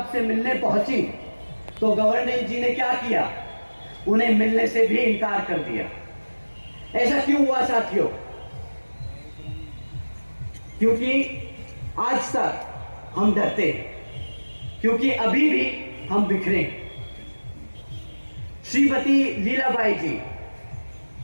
से मिलने पहुंची, तो गवर्नर जी ने क्या किया? उन्हें मिलने से भी इनकार कर दिया। ऐसा क्यों हुआ साथियों? क्योंकि आज तक हम डरते हैं, क्योंकि अभी भी हम बिखरे। श्रीमती लीलाबाई जी,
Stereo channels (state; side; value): inverted; both; correlation -1.00